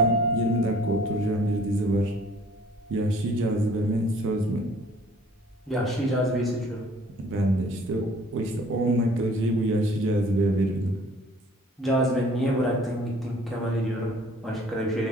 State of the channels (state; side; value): normal; both; correlation 0.54